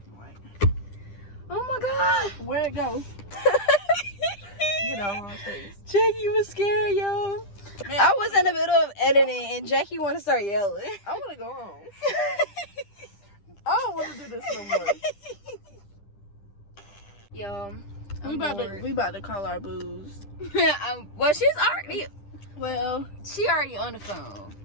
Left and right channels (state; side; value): late; right; 10 ms